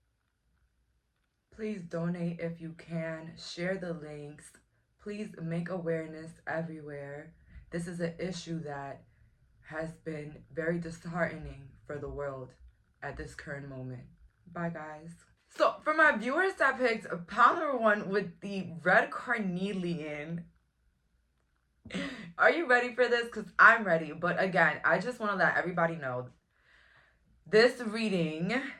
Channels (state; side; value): identical; both; correlation 1.00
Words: Please donate if you can, share the links, please make awareness everywhere. This is an issue that has been very disheartening for the world at this current moment. Bye guys. So for my viewers that picked pile number one with the red carnelian, are you ready for this? Because I'm ready. But again, I just want to let everybody know this reading